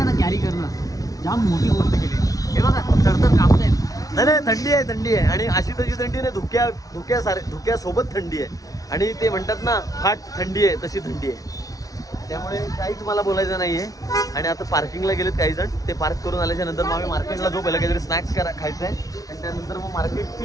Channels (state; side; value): late; right; 0.18 ms